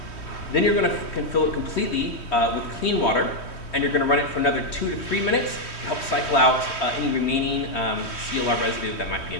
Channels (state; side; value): late; right; 3.1 ms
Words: Then you're going to fill it completely with clean water, and you're going to run it for another 2 to 3 minutes to help cycle out any remaining CLR residue that might be